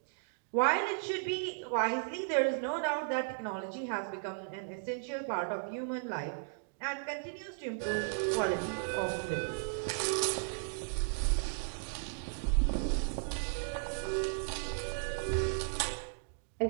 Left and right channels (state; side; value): silent; left; digital silence